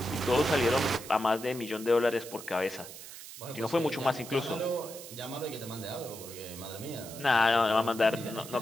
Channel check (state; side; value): noise; right; hiss, 13 dB below the sound